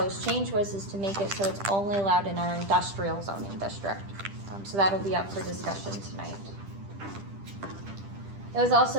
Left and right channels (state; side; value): late; left; 10 ms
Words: change was is to make it so it's only allowed in our industrial zoning district. So that'll be up for discussion tonight. It was